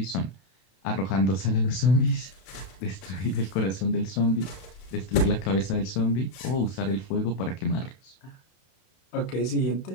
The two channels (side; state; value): right; late; 32 ms